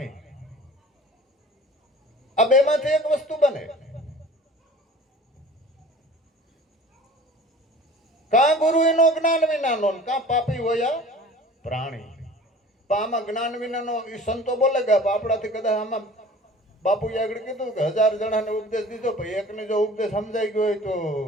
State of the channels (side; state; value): both; normal; correlation 0.44